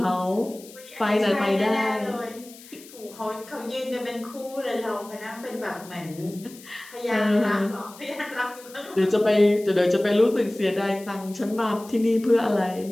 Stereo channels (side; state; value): left; noise; hiss, 20 dB below the sound